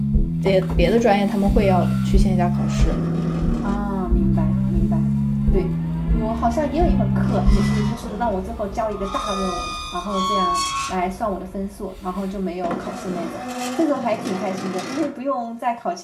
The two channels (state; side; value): identical; both; correlation 1.00